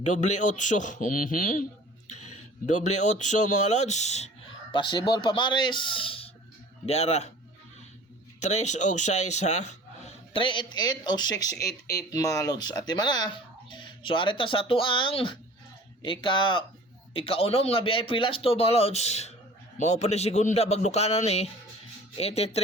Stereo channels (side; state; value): both; normal; correlation 0.45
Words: 8 mga lods. Possible pa mares diara 3 og 6 ha. 388 o 688 mga lods at imana. So arita sa tuang ikaunom nga VIP last to mga lods. Mao pa ni segunda bagdukanan ni